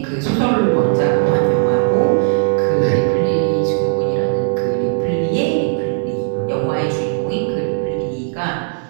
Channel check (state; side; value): silent; left; digital silence